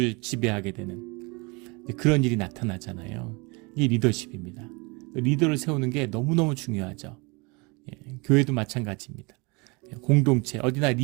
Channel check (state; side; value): quieter; left; 28.4 dB